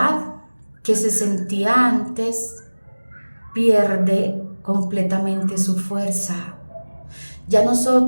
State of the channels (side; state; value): both; inverted; correlation -1.00